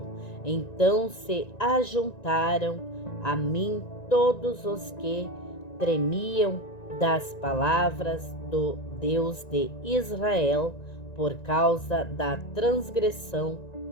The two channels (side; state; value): right; late; 1.9 ms